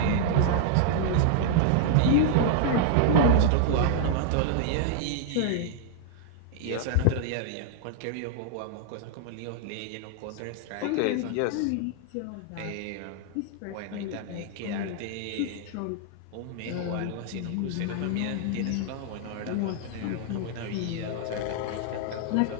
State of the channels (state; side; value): different; both; correlation -0.01